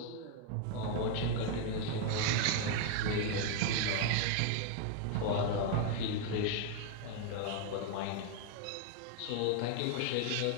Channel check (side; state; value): both; different; correlation 0.01